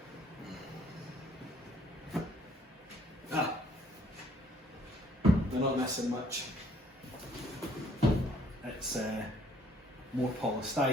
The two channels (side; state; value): both; normal; correlation 0.62